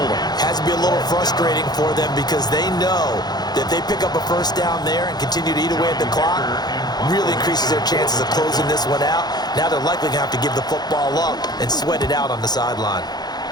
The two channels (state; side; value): late; right; 0.20 ms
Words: Has to be a little frustrating for them because they know that if they pick up a first down there and continue to eat away at the clock, really increases their chances of closing this one out. Now they're likely going to have to give the football up and sweat it out on the sideline.